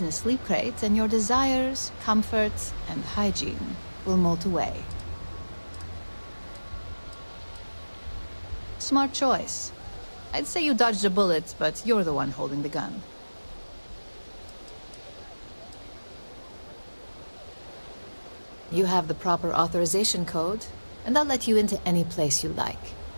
in a sleep crate and your desires, comfort, and hygiene will mold away. Smart choice. I'd say you dodged a bullet, but you're the one holding the gun. You have the proper authorization code, and I'll let you into any place you like.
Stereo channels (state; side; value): inverted; both; correlation -1.00